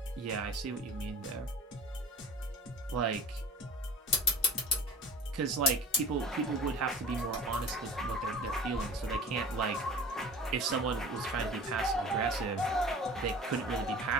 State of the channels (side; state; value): both; normal; correlation 0.41